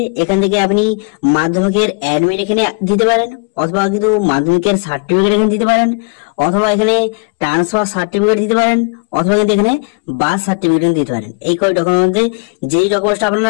এখান থেকে আপনি মাধ্যমিকের অ্যাডমিট এখানে দিতে পারেন, অথবা কিন্তু মাধ্যমিকের সার্টিফিকেট এখানে দিতে পারেন, অথবা এখানে ট্রান্সফার সার্টিফিকেট দিতে পারেন, অথবা কিন্তু এখানে বার্থ সার্টিফিকেট দিতে পারেন। এই কয় ডকুমেন্টের মধ্যে যেই ডকুমেন্টসটা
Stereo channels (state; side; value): quieter; right; 35.2 dB